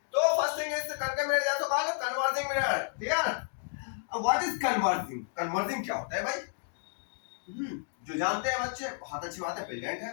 तो फर्स्ट थिंग इज करके मेरे जैसा कॉल कन्वर्जिंग मिरर, क्लियर। अब व्हाट इज कन्वर्जिंग, कन्वर्जिंग क्या होता है भाई? जो जानते हैं बच्चे बहुत अच्छी बात है, ब्रिलियंट है।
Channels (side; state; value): right; silent; digital silence